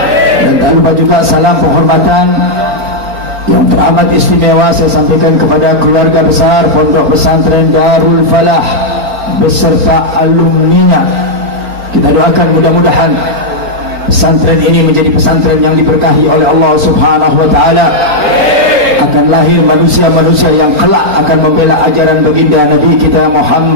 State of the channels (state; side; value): late; left; 4.4 ms